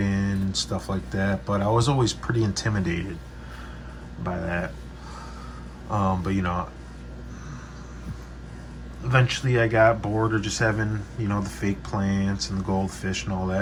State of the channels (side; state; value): both; identical; correlation 1.00